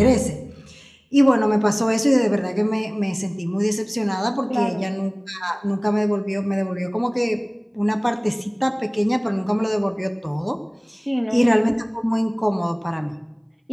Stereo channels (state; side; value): identical; both; correlation 1.00